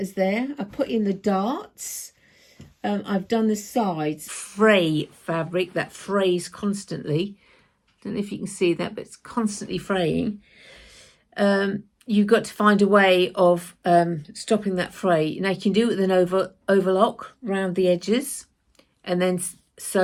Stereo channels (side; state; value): both; identical; correlation 1.00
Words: there. I put in the darts. I've done the sides. Fray fabric that frays constantly. Don't know if you can see that, but it's constantly fraying. You've got to find a way of stopping that fray. Now you can do it with an overlock around the edges and then